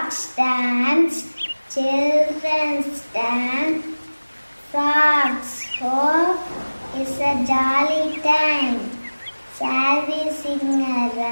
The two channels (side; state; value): both; inverted; correlation -1.00